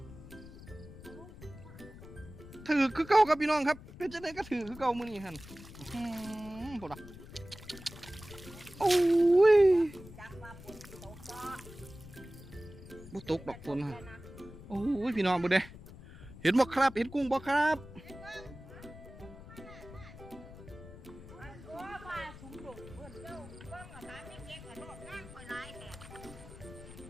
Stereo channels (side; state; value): left; noise; rumble, 16 dB below the sound